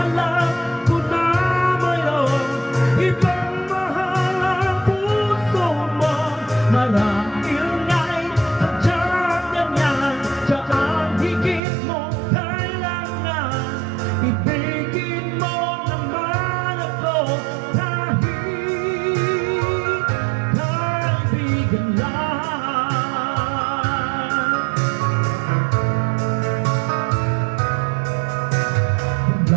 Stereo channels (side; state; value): left; drops out; at 11.6 s